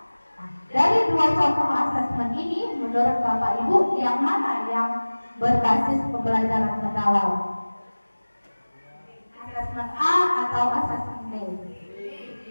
Nah, dari 2 contoh asesmen ini, menurut Bapak Ibu, yang mana yang berbasis pembelajaran mendalam? Asesmen A atau asesmen B?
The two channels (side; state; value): both; inverted; correlation -1.00